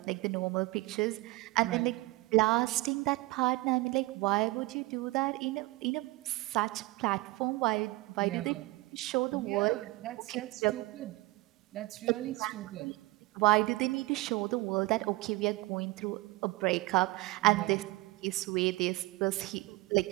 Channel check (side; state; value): left; quieter; 21.2 dB